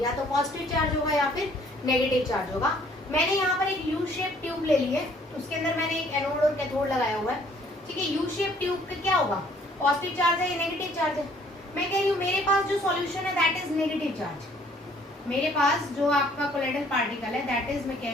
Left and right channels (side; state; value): both; normal; correlation 0.60